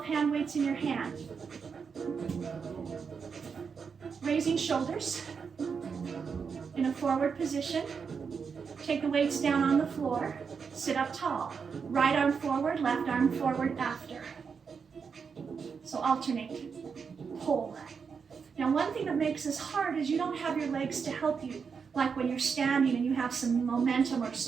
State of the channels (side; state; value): left; quieter; 5.9 dB